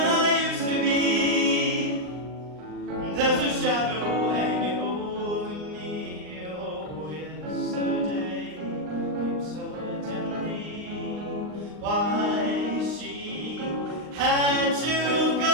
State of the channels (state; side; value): late; left; 39 ms